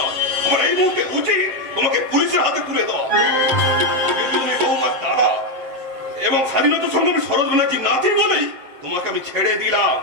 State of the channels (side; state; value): left; late; 7.6 ms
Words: আমার এই মুহূর্তে উচিত তোমাকে পুলিশের হাতে তুলে দেওয়া। কিন্তু তুমি বৌমার দাদা এবং স্বাধীনতা সংগ্রামী শরৎ ব্যানার্জির নাতি বলেই তোমাকে আমি ছেড়ে দিলাম।